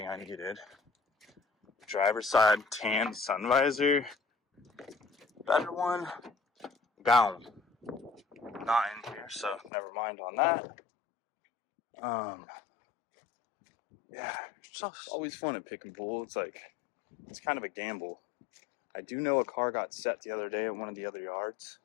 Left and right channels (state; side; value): drops out; right; at 9.7 s